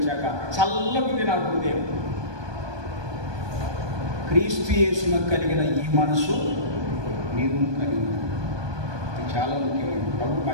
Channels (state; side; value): late; left; 1.2 ms